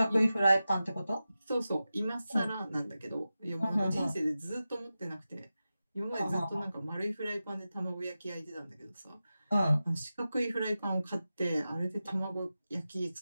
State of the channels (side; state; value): both; inverted; correlation -0.93